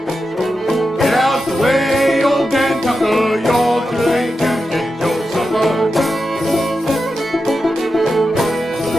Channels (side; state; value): both; normal; correlation 0.90